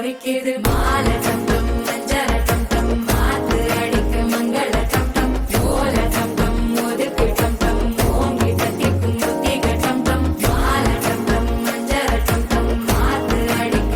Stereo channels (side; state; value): both; identical; correlation 1.00